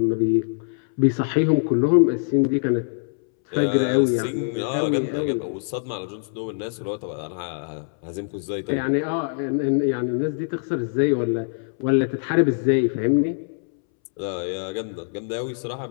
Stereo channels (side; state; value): right; silent; 63 dB below the other